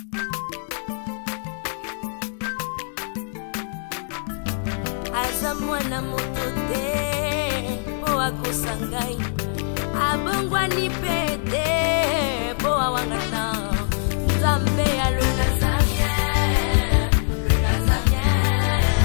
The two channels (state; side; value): silent; right; 58 dB below the other